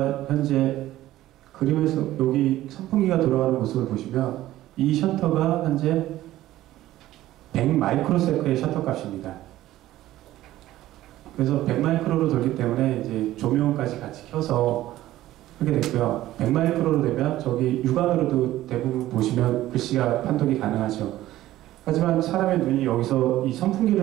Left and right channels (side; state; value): left; quieter; 14.9 dB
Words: 현재 그림에서 여기 선풍기가 돌아가는 모습을 보시면 이 셔터가 현재 100 마이크로세컨의 셔터 값입니다. 그래서 100 마이크로로 돌기 때문에 이제 조명까지 같이 켜서 하게 됐고요. 100 마이크로로 되면 저기 육안으로도 대부분 보시면 글씨가 판독이 가능하죠. 하지만 사람의 눈이 여기서 이